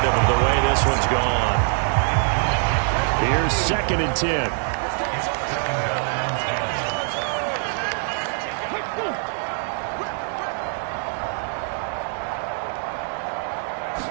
of the way this one's gone. Here's 2nd and 10.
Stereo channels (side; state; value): left; silent; 58 dB below the other